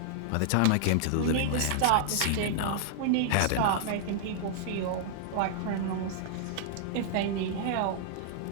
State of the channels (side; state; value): both; different; correlation -0.01